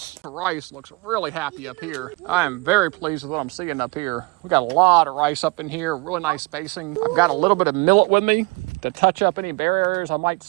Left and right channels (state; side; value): quieter; left; 26.2 dB